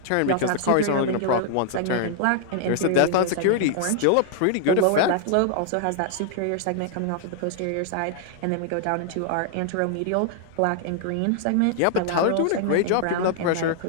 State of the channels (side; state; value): both; different; correlation 0.00